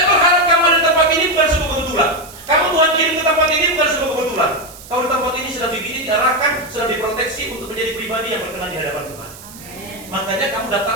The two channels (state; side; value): noise; right; hiss, 18 dB below the sound